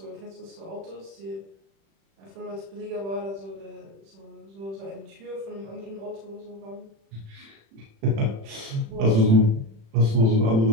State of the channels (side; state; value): left; late; 36 ms